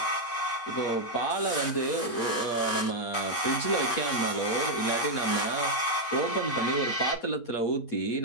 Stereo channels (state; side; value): late; right; 8.4 ms